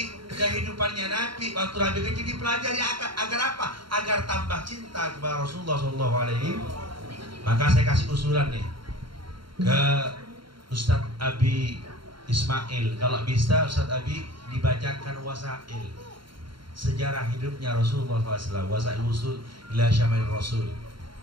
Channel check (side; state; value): left; late; 0.73 ms